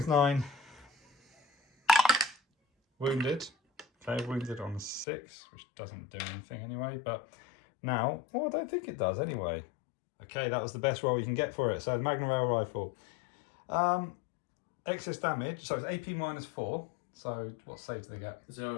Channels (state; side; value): drops out; right; at 5.1 s